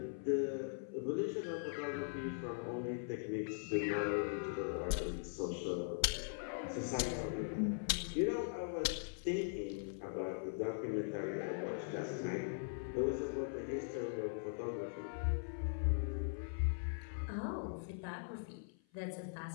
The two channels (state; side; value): silent; right; 50 dB below the other